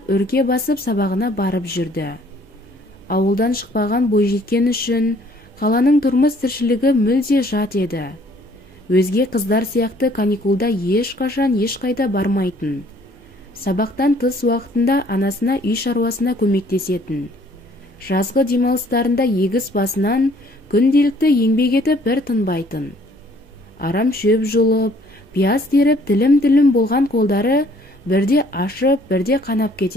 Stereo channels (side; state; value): both; normal; correlation 0.60